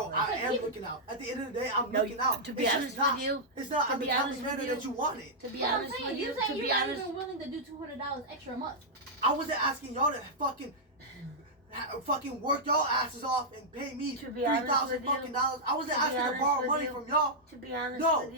I But am people- looking out. At the end of the day, I'm No, looking out. to be It's honest just not, with you, it's not to I'm the be type honest of with manner you- that you wanted. to be But I'm honest saying, with you you, saying to you're be not honest, even willing to do $200 extra a month. I wasn't asking y'all to fucking work y'all asses off and pay me To be honest $3,000 with you- fucking dollars. I wasn't to be asking to honest borrow with money you- from y'all. to be honest No. with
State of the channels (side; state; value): both; normal; correlation -0.08